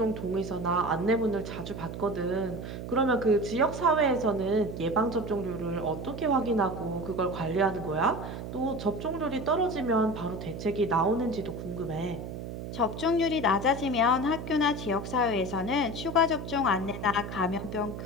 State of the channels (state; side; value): noise; right; hum, 8 dB below the sound